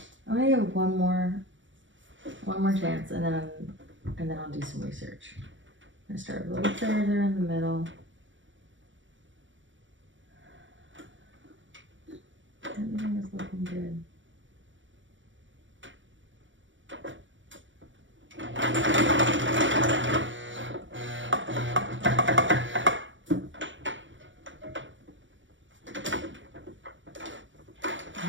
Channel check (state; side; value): late; left; 0.56 ms